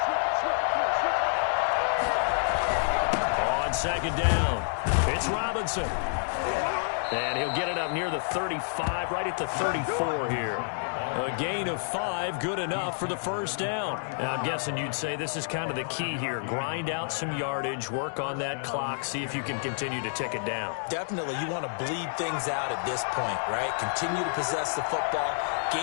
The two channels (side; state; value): right; silent; digital silence